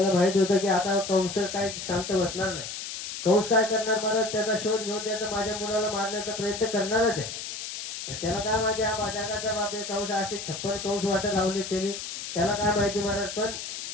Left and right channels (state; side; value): noise; left; hiss, 7 dB below the sound